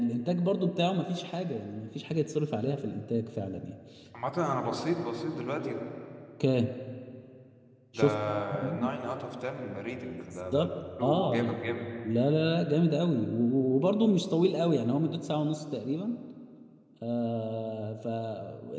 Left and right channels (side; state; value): both; identical; correlation 1.00